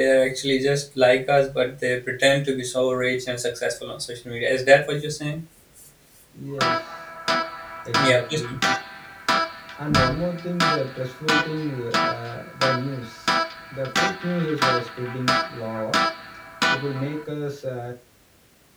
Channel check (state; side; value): identical; both; correlation 1.00